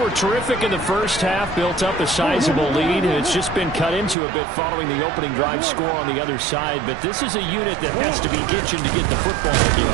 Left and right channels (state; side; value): drops out; left; at 4.2 s